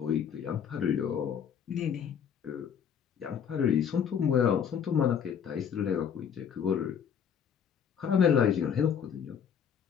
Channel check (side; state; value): right; quieter; 7.8 dB